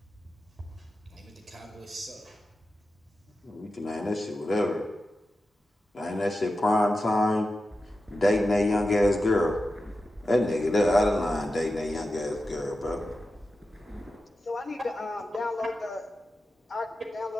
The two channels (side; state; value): both; normal; correlation 0.91